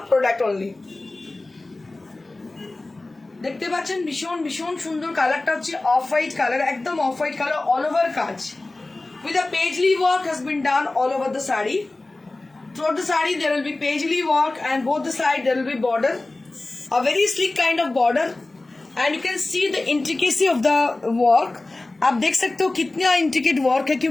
product only. দেখতে পাচ্ছেন ভীষণ ভীষণ সুন্দর কালারটা হচ্ছে off white colour, একদম off white colour, all over কাজ with a paisley work has been done all over the saree. Throughout the saree there will be paisley work, and both the side there will be border, a very sleek kind of border, and you can see the intricacy of the work. आप देख सकते हो कितना intricate work है,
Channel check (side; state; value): right; quieter; 3.0 dB